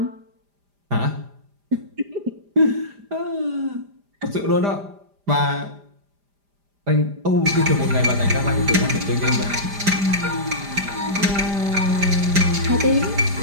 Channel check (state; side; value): late; left; 5.0 ms